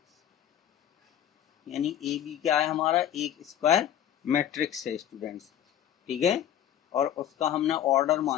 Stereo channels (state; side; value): quieter; right; 10.6 dB